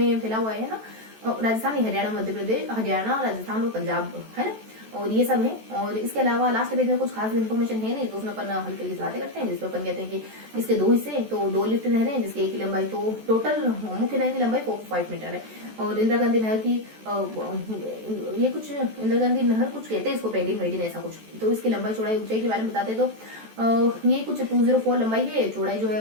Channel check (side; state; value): left; late; 14 ms